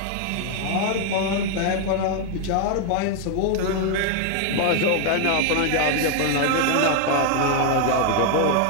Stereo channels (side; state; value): both; different; correlation 0.00